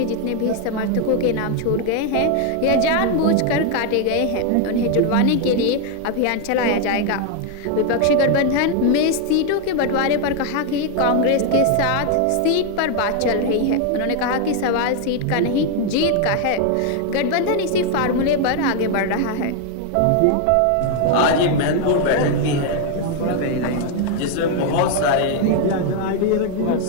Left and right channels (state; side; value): different; both; correlation 0.00